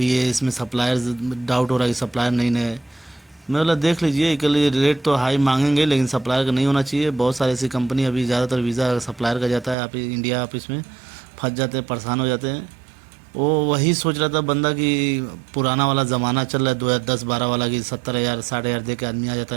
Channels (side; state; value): left; drops out; at 9.8 s